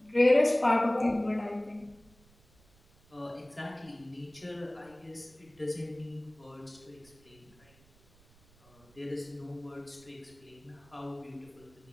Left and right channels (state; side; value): noise; right; rumble, 28 dB below the sound